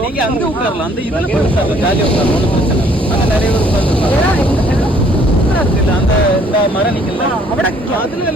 நீங்க அங்கே உட்காரலாம். அந்த இதில் உட்காரலாம், ஜாலியாக உட்காரலாம், ஒன்றும் பிரச்சனை. அங்கே நிறைய பேர் உட்காந்துருக்காங்க. அந்த இந்த மரம் நிக்கல அதுல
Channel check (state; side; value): normal; both; correlation 0.61